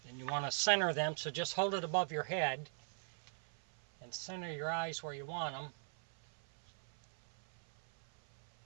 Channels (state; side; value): silent; left; 51 dB below the other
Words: Then you want to center them, so just hold it above your head and center your eyes where you want them.